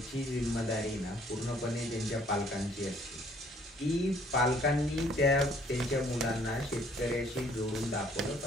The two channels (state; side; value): normal; both; correlation 0.61